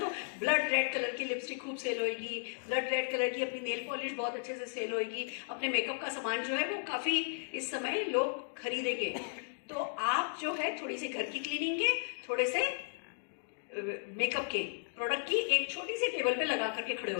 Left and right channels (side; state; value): right; silent; digital silence